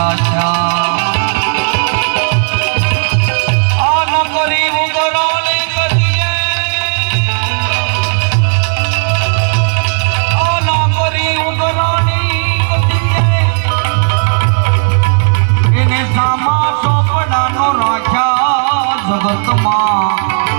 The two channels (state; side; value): silent; left; digital silence